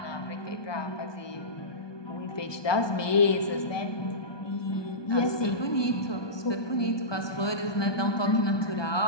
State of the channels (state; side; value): late; right; 1.2 ms